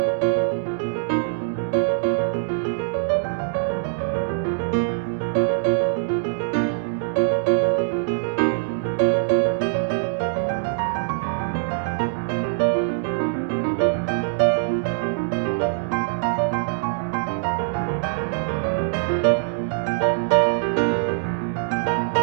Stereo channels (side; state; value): left; silent; 63 dB below the other